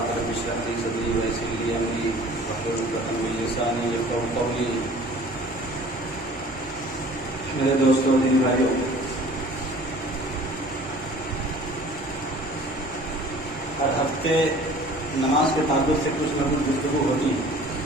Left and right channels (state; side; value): normal; both; correlation 0.48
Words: رب اشرح لي صدري ويسر لي أمري واحلل عقدة من لساني يفقهوا قولي. میرے دوستوں دینی بھائیوں، ہر ہفتے نماز کے تعلق سے کچھ نہ کچھ گفتگو ہوتی ہے،